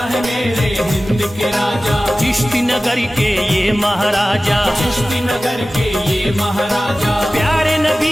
है मेरे हिंद के राजा, चिश्ती नगर के ये महाराजा, चिश्ती नगर के ये महाराजा, प्यारे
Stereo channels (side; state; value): both; normal; correlation 0.96